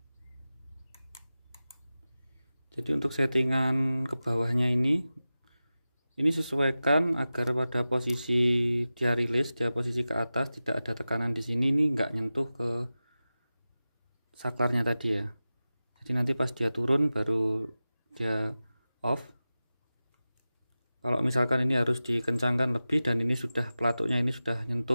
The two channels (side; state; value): both; inverted; correlation -0.95